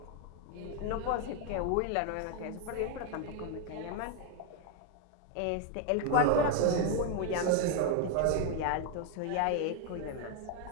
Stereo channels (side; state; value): both; different; correlation 0.01